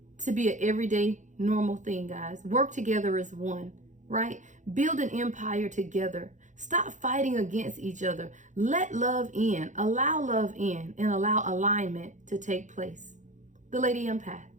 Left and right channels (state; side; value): late; left; 0.36 ms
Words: to be an everyday normal thing, guys. Work together as one, right? Build an empire together. Stop fighting against each other. Let love in, allow love in, and allow alignment to take place. The Lady Empath,